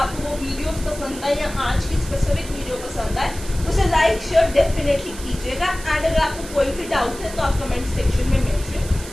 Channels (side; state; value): right; noise; hiss, 14 dB below the sound